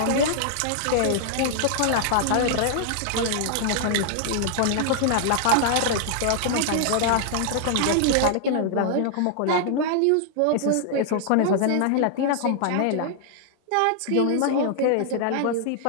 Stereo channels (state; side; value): different; both; correlation -0.01